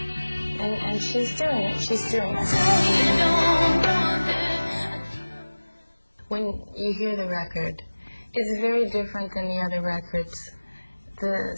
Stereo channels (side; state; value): both; inverted; correlation -1.00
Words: and she's doing it. When you hear the record, it's very different than the other records. The